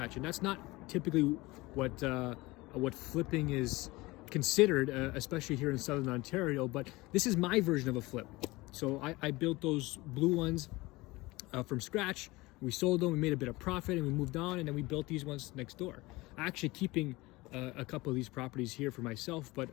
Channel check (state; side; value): quieter; right; 21.4 dB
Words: And that's not typically what flipping is considered, especially here in Southern Ontario, but this is my version of a flip. So I built those blue ones from scratch. We sold them, we made a bit of profit, and we moved on, and then we built these ones next door. Actually keeping a couple of these properties here for myself, but